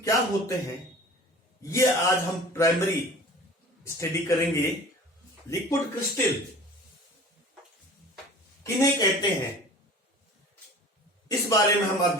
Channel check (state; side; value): normal; both; correlation 0.42